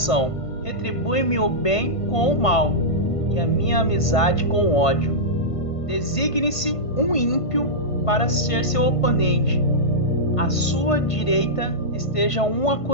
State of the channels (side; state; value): right; late; 1.5 ms